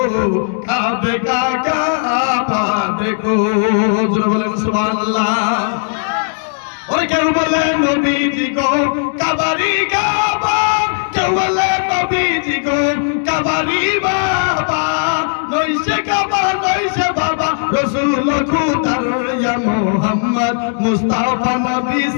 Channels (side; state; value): right; silent; 69 dB below the other